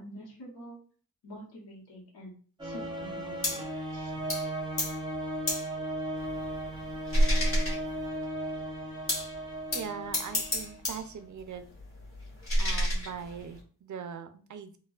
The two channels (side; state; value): both; normal; correlation 0.56